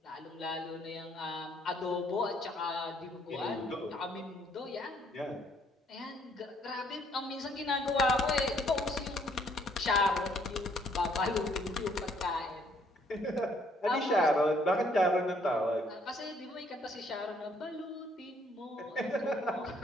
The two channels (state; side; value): normal; both; correlation 0.65